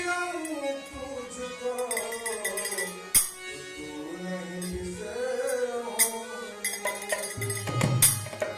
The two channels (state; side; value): identical; both; correlation 1.00